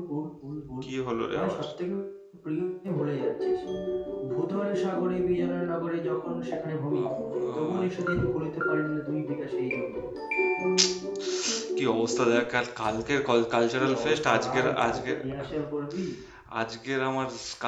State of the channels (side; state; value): both; identical; correlation 1.00